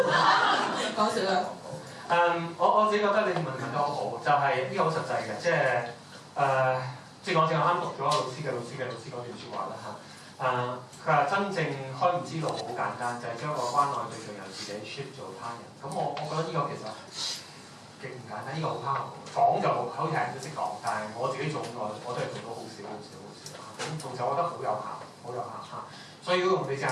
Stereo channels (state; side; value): identical; both; correlation 1.00